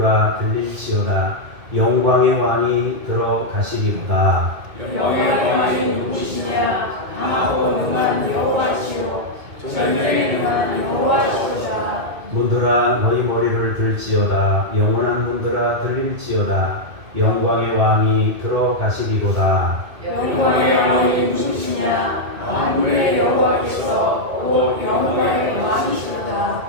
들릴지어다. 영광의 왕이 들어가시리로다. 영광의 왕이 누구시냐? 강하고 능한 여호와시오 전쟁에 능한 여호와시오다. 문들아 너희 머리를 들지어다. 영원한 문들아 들릴지어다. 영광의 왕이 들어가시리로다. 영광의 왕이 누구시냐? 만군의 여호와께서 또 영원의 왕이시로다.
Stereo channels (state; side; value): late; left; 2.2 ms